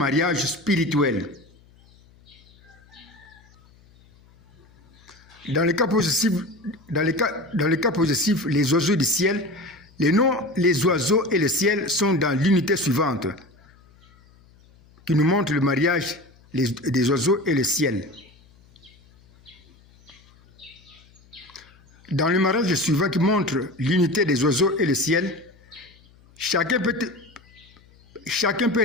spirituel. Dans le cas possessif, les oiseaux du ciel, les noms, les oiseaux et le ciel sont dans l'unité suivante, qui nous montre le mariage des oiseaux et le ciel. Dans le mariage suivant qui montre l'unité des oiseaux et le ciel, chacun peut chacun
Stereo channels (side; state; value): left; noise; hum, 28 dB below the sound